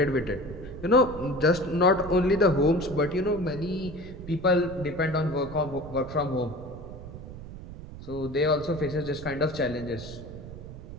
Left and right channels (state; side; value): noise; right; rumble, 13 dB below the sound